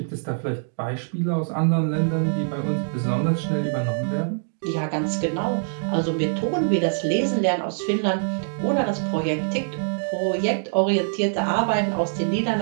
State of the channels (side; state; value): left; silent; digital silence